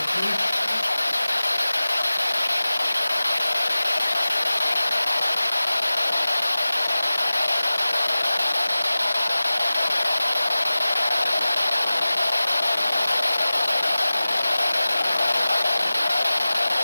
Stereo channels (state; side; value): inverted; both; correlation -0.97